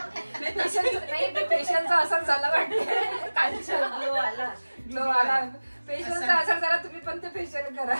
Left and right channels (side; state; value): both; inverted; correlation -1.00